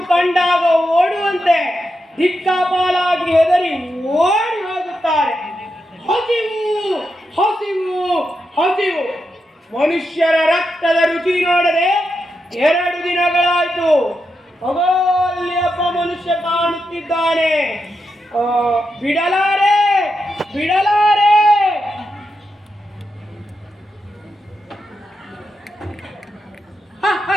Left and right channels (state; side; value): normal; both; correlation 0.86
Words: ಕಂಡಾಗ ಓಡುವಂತೆ ದಿಕ್ಕಾಪಾಲಾಗಿ ಹೆದರಿ ಓಡಿ ಹೋಗುತ್ತಾರೆ. ಹಸಿವು ಹಸಿವು ಹಸಿವು. ಮನುಷ್ಯರ ರಕ್ತದ ರುಚಿ ನೋಡದೆ 2 ದಿನಗಳಾಯ್ತು. ಅಲ್ಲಿ ಒಬ್ಬ ಮನುಷ್ಯ ಕಾಣುತ್ತಿದ್ದಾನೆ. ಬಿಡಲಾರೆ ಬಿಡಲಾರೆ.